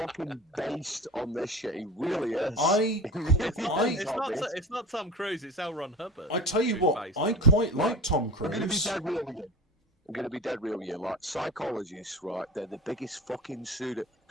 based on this shit. He really is. It's not Tom Cruise. It's L. Ron Hubbard. I tell you what, I quite like Tom Cruise. I'm going to be dead real with you. Like, psychologists, right? They're the biggest fucking pseudo.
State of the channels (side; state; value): both; normal; correlation 0.32